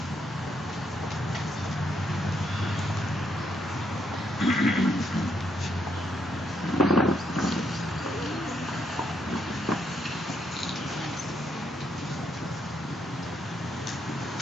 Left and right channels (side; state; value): both; normal; correlation 0.76